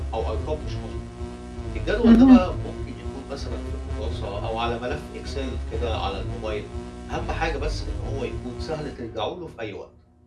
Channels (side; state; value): both; identical; correlation 1.00